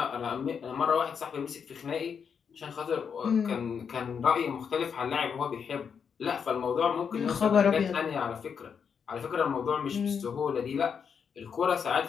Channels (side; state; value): right; quieter; 6.8 dB